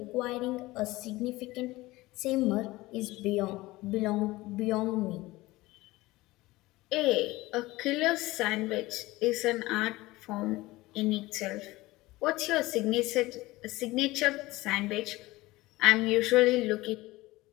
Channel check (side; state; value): right; quieter; 19.5 dB